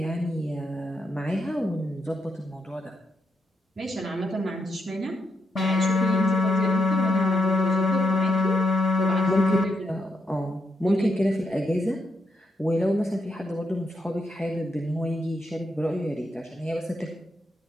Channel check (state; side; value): normal; both; correlation 0.81